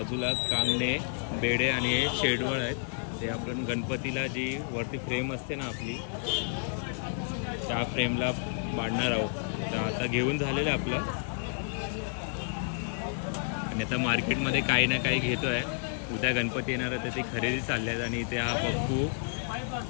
कांगणे, बेडे आणि हे शेडवळ आहेत. ते आपण गणपतीला जी वरती फ्रेम असते ना आपली, त्या फ्रेमला बांधणार आहोत. तर आता घेऊन झालेलं आहे आपलं. आणि आता मार्केटमध्ये काही ना काही घेतो आहे. उद्या गणपती येणार आहे तर ती खरेदी चालली आहेत. आणि इथे हा पप्पू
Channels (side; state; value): right; silent; digital silence